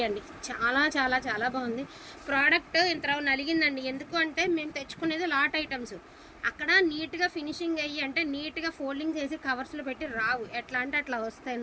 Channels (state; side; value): identical; both; correlation 1.00